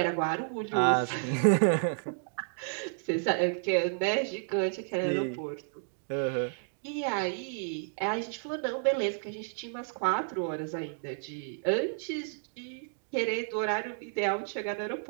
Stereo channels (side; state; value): left; silent; digital silence